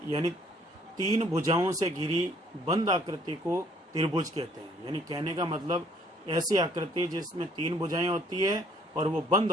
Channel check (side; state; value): both; normal; correlation 0.62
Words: यानी तीन भुजाओं से घिरी बंद आकृति को त्रिभुज कहते हैं। यानी कहने का मतलब ऐसी आकृति जिसमें तीन भुजाएं होती है और वो बंद